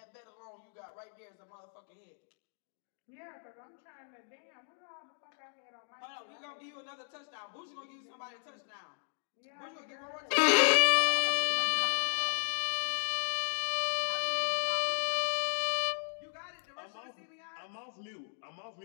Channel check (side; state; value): right; silent; digital silence